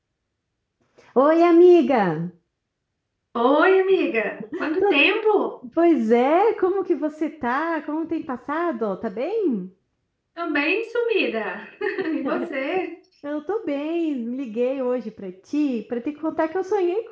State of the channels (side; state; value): both; identical; correlation 1.00